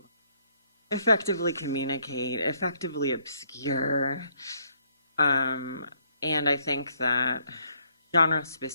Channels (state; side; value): inverted; both; correlation -0.70